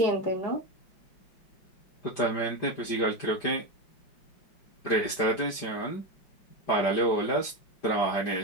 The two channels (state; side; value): late; right; 5.1 ms